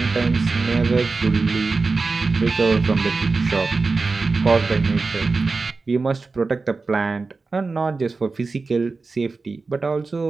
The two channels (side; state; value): left; quieter; 4.0 dB